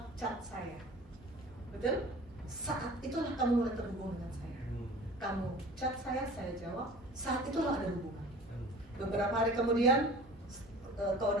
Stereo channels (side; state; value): both; normal; correlation 0.43